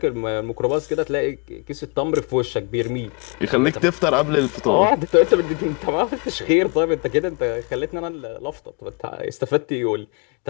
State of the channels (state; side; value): quieter; right; 33.6 dB